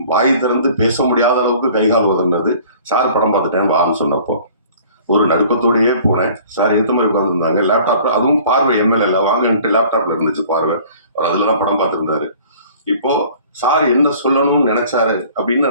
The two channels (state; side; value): inverted; both; correlation -0.50